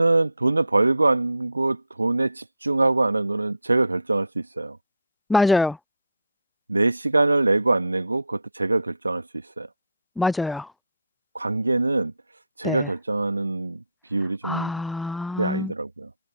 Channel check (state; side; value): inverted; both; correlation -0.62